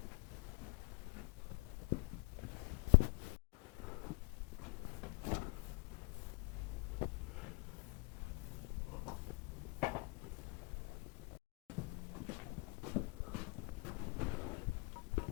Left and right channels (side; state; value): right; quieter; 31.1 dB